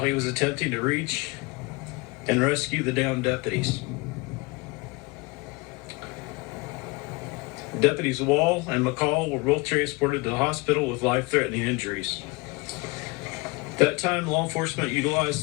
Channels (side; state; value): right; quieter; 25.4 dB